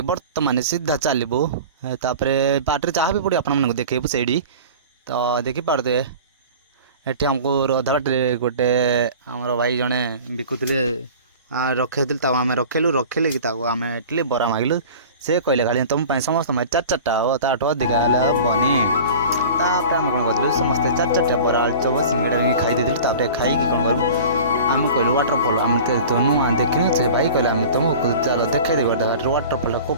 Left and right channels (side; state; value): both; inverted; correlation -0.39